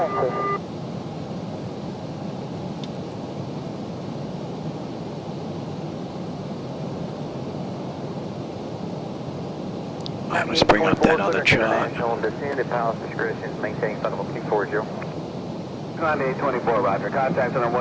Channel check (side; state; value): both; identical; correlation 1.00